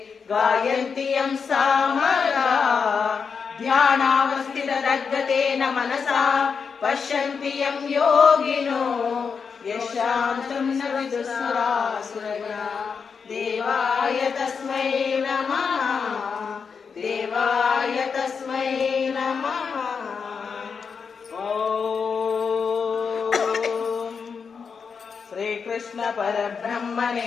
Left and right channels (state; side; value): quieter; right; 5.8 dB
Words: गायन्ति यं सामगाः। ध्यानावस्थितदग्गतेन मनसा पश्यन्ति यं योगिनो यशान्तं न विदुःसुरासुरगणा देवाय तस्मै नमः देवाय तस्मै नमः। श्रीकृष्ण